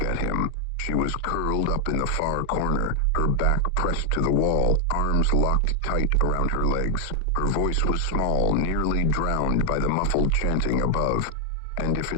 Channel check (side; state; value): both; different; correlation 0.00